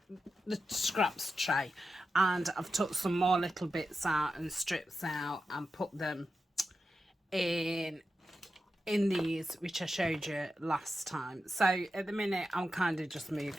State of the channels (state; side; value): normal; both; correlation 0.90